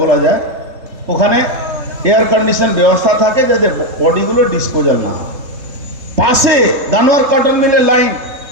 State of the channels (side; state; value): left; late; 3.7 ms